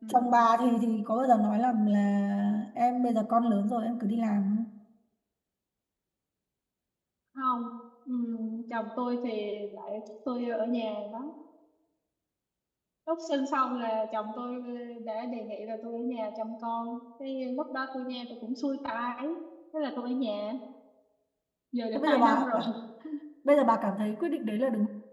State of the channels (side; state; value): both; identical; correlation 1.00